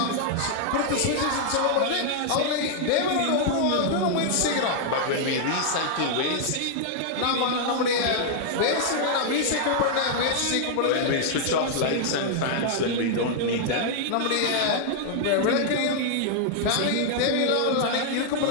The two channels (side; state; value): both; different; correlation -0.01